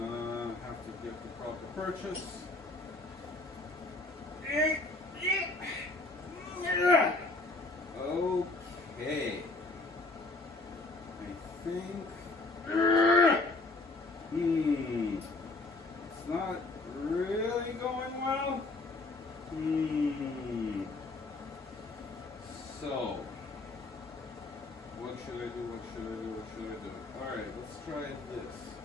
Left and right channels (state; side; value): quieter; right; 3.2 dB